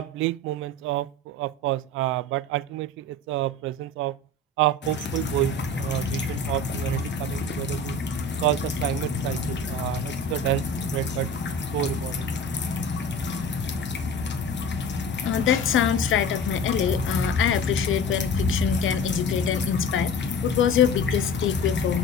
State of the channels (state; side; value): normal; both; correlation 0.36